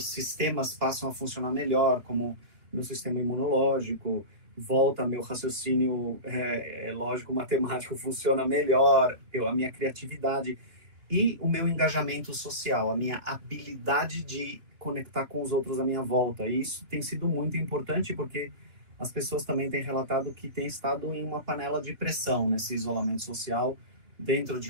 sistemas passam a funcionar melhor, como meu sistema imunológico, volta meu raciocínio lógico, matemático funciona melhor, a minha criatividade e o meu engajamento social, a minha habilidade de conectar com os outros à minha volta. E isso tem sido muito importante, porque as pessoas também têm relatado que têm estado em uma panela de pressão nesse isolamento social, dentro de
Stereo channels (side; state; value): left; late; 3.0 ms